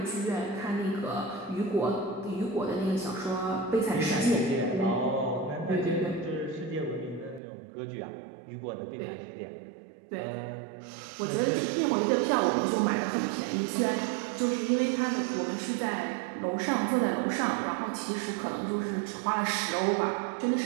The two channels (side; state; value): left; drops out; at 7.4 s